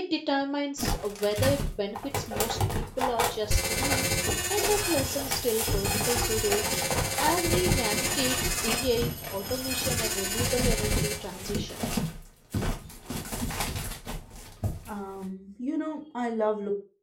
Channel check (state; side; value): identical; both; correlation 1.00